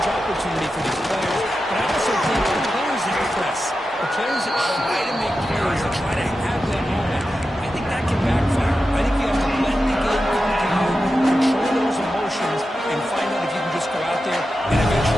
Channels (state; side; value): normal; both; correlation 0.91